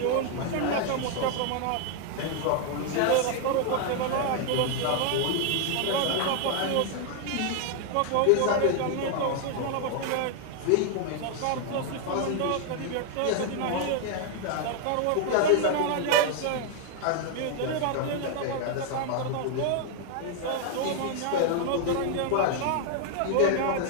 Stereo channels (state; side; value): different; both; correlation 0.00